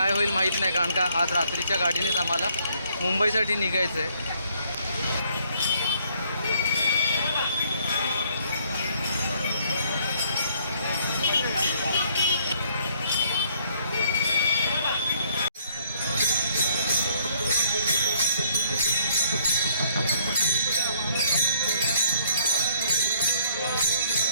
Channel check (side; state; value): both; inverted; correlation -0.65